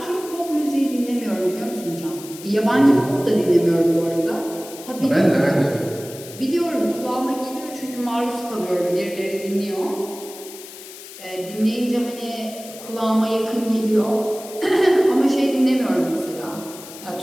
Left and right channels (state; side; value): noise; left; hiss, 15 dB below the sound